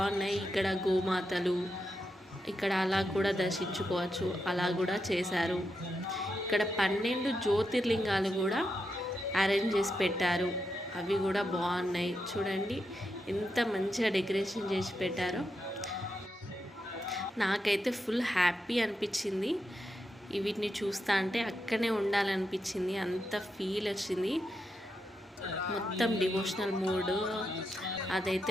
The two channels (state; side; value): normal; both; correlation 0.85